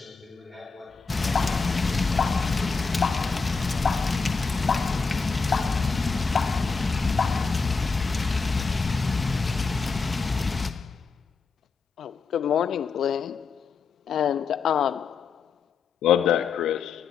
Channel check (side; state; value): right; quieter; 4.9 dB